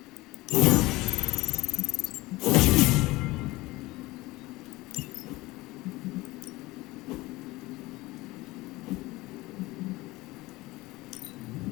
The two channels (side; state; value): right; quieter; 20.4 dB